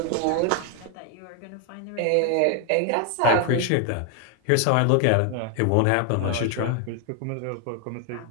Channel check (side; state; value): both; different; correlation 0.01